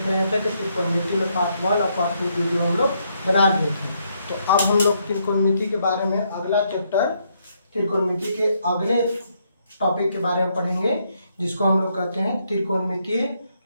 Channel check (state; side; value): inverted; both; correlation -0.75